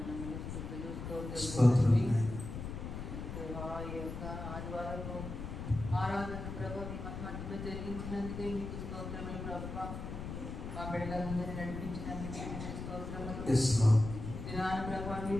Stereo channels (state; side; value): noise; left; rumble, 7 dB below the sound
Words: ఆరాధన ప్రభావ మీ మధ్యలో జరిగించినందుకే మీకు స్తోత్రములు ప్రభువా. మా బిడ్డలందరినీ నడిపించినందుకే మీకు స్తోత్రములు. దినాన ప్రభావ